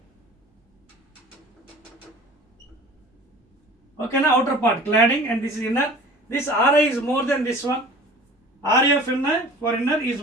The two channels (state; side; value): normal; both; correlation 0.43